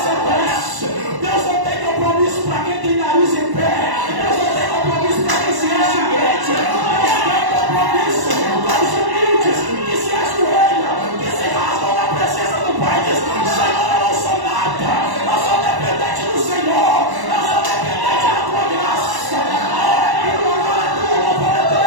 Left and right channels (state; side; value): late; left; 1.1 ms